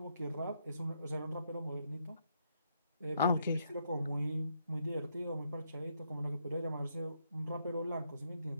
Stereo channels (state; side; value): inverted; both; correlation -0.76